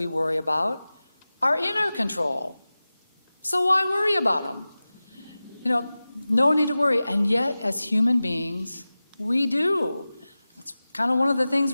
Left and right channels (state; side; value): inverted; both; correlation -0.96